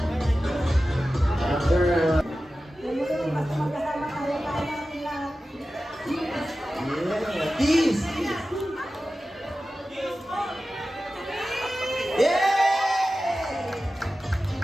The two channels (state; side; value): normal; both; correlation 0.94